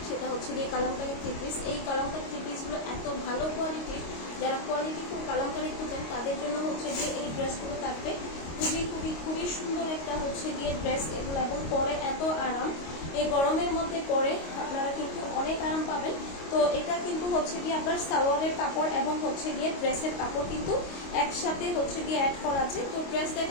সেটা গিয়ে কালামকারী থ্রি পিস। এই কালামকারী থ্রি পিসগুলো এত ভালো কোয়ালিটির, যারা কোয়ালিটি খুব কালামকারী খুঁজেন তাদের জন্য গিয়ে এই ড্রেসগুলো থাকবে। খুবই খুবই খুবই সুন্দর একটা গিয়ে ড্রেস এগুলো, এবং পরে এত আরাম। এই গরমের মধ্যে পরে আপনারা কিন্তু অনেক আরাম পাবেন। তো এটা কিন্তু গিয়ে আপনার সালোয়ারের কাপড় এবং গিয়ে ড্রেসের কাপড় কিন্তু একসাথে গিয়ে অ্যাড করা আছে। তো ড্রেস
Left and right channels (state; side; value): late; right; 25 ms